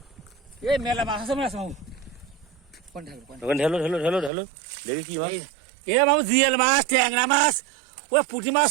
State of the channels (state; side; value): drops out; left; at 4.3 s